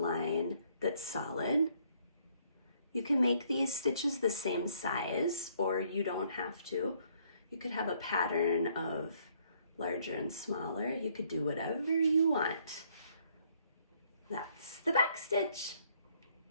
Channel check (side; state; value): both; inverted; correlation -0.66